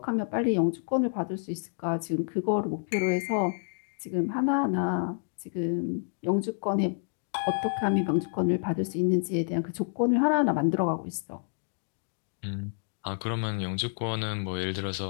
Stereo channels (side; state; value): right; silent; digital silence